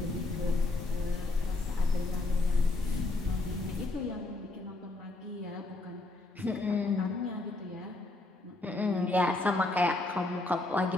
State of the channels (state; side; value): quieter; right; 3.0 dB